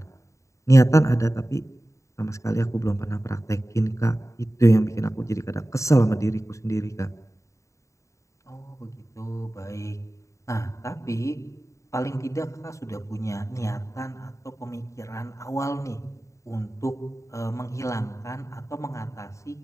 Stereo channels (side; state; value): right; late; 0.15 ms